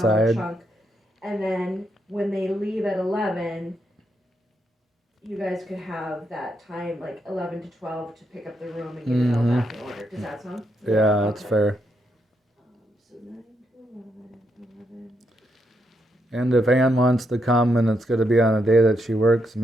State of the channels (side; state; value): both; normal; correlation 0.80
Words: chunk. And then when they leave at 11, you guys could have that time, like 11 to 12, to pick up the room and get it all back in order. Does that sound? Yeah, that's Okay. fair. So 9 to 11. And if Ann wants to come and it's gonna be on a day that she works,